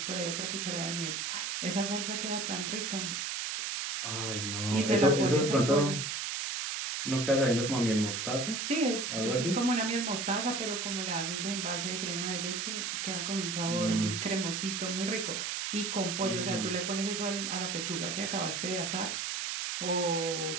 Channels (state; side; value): noise; right; hiss, 2 dB below the sound